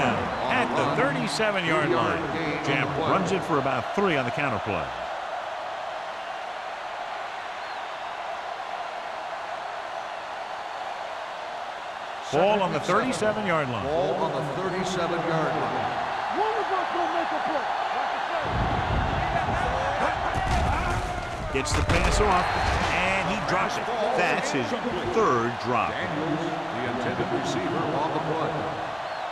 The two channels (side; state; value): both; identical; correlation 1.00